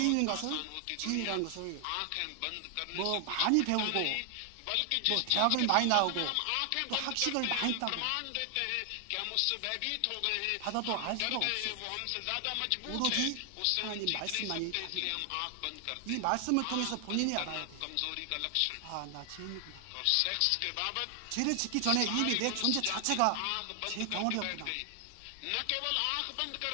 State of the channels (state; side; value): different; both; correlation 0.00